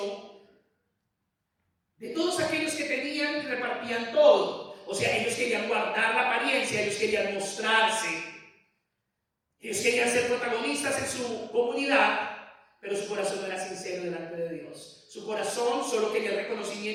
de todos aquellos que tenían y repartían todo. O sea, ellos querían guardar la apariencia, ellos querían mostrarse, ellos querían ser protagonistas en su comunidad, pero su corazón no era sincero delante de Dios. Su corazón solo quería el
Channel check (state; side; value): identical; both; correlation 1.00